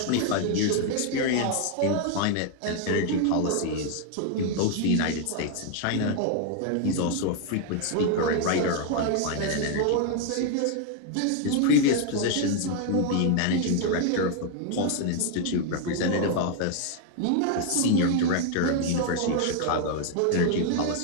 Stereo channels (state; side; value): different; both; correlation 0.00